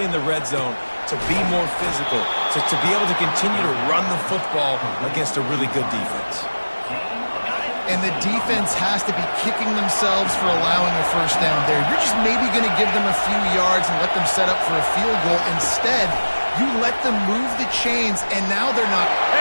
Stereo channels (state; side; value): inverted; both; correlation -1.00